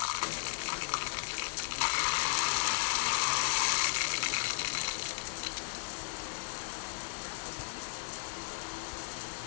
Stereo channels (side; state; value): right; silent; digital silence